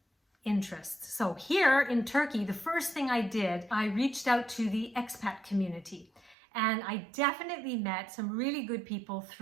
interests. So here in Turkey, the first thing I did, I reached out to the expat community. And I definitely met some really good people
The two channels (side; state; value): left; drops out; at 6.4 s